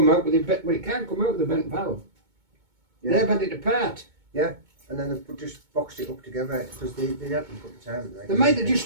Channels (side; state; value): left; late; 2.2 ms